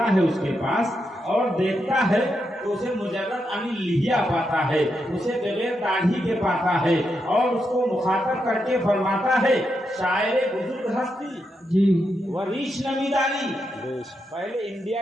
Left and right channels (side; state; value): both; normal; correlation 0.84